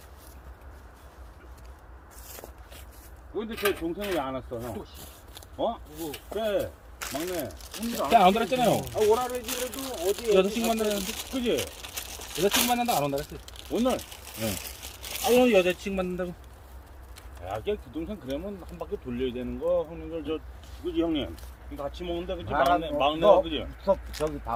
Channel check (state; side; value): identical; both; correlation 1.00